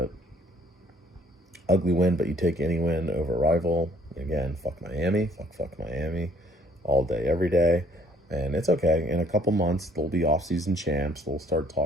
ugly win, but you take any win over a rival. Again, fuck Miami, fuck Miami, all day, every day. And it's okay. In a couple months, they'll be off-season champs. They'll start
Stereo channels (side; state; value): both; normal; correlation 0.61